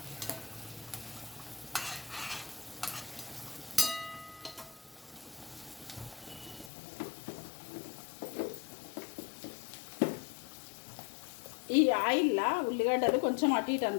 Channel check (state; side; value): drops out; right; at 6.7 s